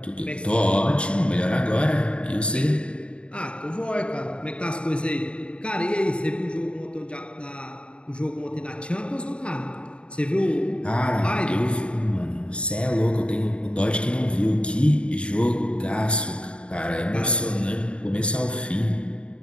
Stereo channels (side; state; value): right; late; 0.057 ms